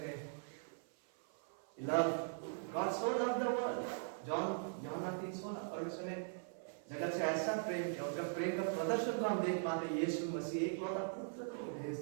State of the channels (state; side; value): silent; left; 51 dB below the other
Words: God so loved the world, यूहन्ना 3:16, परमेश्वर ने जगत से ऐसा प्रेम किया, उनका प्रेम का प्रदर्शन को हम देख पाते हैं। यीशु मसीह एकलौता पुत्र को